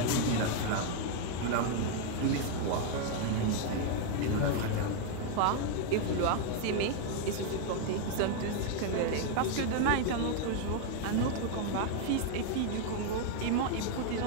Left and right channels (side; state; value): both; different; correlation 0.01